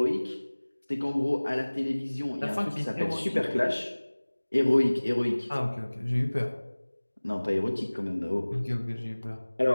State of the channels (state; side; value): inverted; both; correlation -1.00